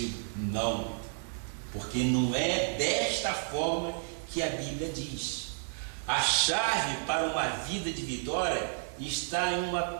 não, porque não é desta forma que a Bíblia diz. A chave para uma vida de vitória está em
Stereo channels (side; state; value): left; silent; 55 dB below the other